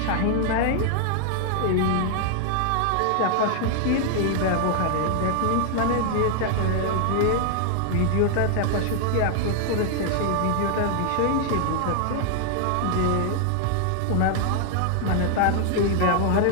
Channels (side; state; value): both; different; correlation 0.00